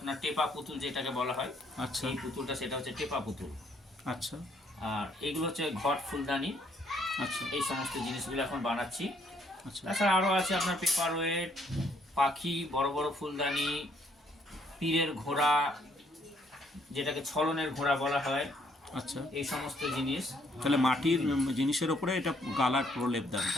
টেপা পুতুল যেটাকে বলা হয়, আচ্ছা, এই পুতুলটা সেটা হচ্ছে টেপা পুতুল। আচ্ছা, আর এইগুলো হচ্ছে ঘট ফুলদানি। আচ্ছা, এই সমস্ত জিনিসগুলো এখন বানাচ্ছি। আচ্ছা, তাছাড়া আরও আছে আপনার পেপার ওয়েট, পাখি, বড় বড় ফুলদানি, পীরের ঘোড়া, যেটাকে ছলনের ঘোড়া বলা হয়, আচ্ছা। এই সমস্ত জিনিস। তাহলে মাটির জিনিসের ওপরে এটা গালার প্রলেপ দেন,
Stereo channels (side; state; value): both; normal; correlation 0.68